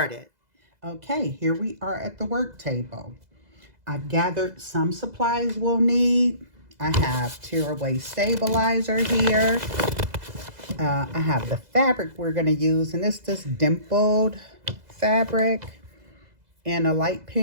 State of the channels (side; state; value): left; late; 2.0 ms